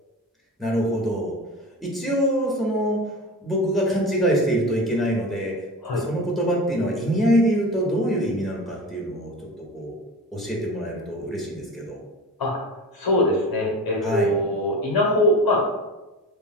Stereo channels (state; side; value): normal; both; correlation 0.32